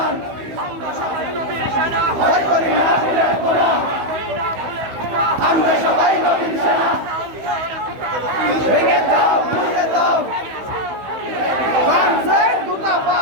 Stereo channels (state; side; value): late; left; 16 ms